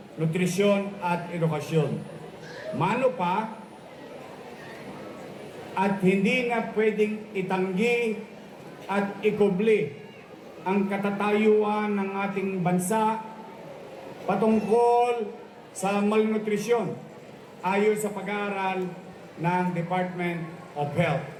nutrisyon at edukasyon. Mano pa, at hindi na pwedeng itanggi at ikubli ang katatayuan ng ating bansa patungkol sa malnutrisyon ayon sa pag-aaral ng Department of Health.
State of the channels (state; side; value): identical; both; correlation 1.00